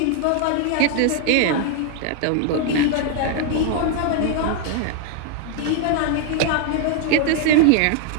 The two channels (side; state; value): both; different; correlation 0.00